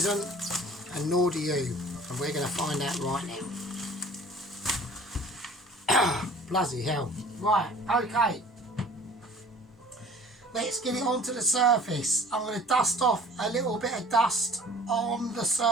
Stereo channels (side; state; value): both; normal; correlation 0.48